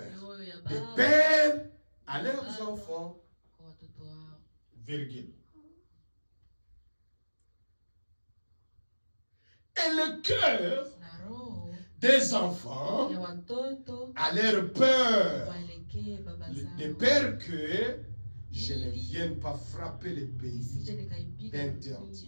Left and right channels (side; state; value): both; inverted; correlation -1.00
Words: des pères à leurs enfants, virgule. Et le cœur des enfants à leur peur, de peur que je ne vienne pas frapper les pays